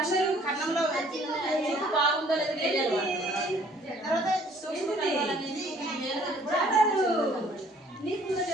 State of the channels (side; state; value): both; normal; correlation 0.58